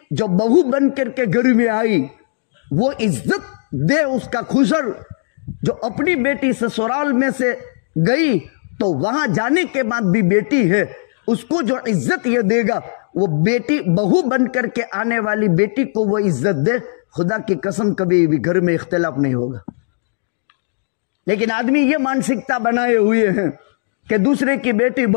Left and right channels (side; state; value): right; silent; digital silence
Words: जो बहू बन करके घर में आई वो इज्जत दे उसका खुसर, जो अपनी बेटी ससुराल में से गई तो वहां जाने के बाद भी बेटी है, उसको जो इज्जत ये देगा, वो बेटी बहू बन करके आने वाली बेटी को वो इज्जत दे, खुदा की कसम कभी भी घर में इख्तिलाफ नहीं होगा। लेकिन आदमी ये मानसिकता बनाए हुए हैं कि दूसरे की बेटी